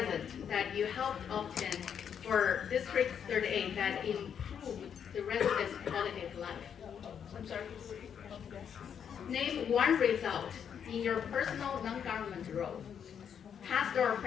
that you helped obtain for District 38 that improved the residents' quality of life. I'm sorry. Name one result in your personal non-government role, past or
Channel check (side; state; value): right; quieter; 8.0 dB